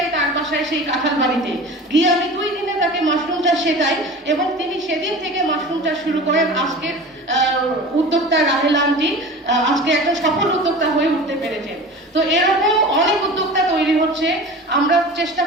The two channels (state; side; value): normal; both; correlation 0.36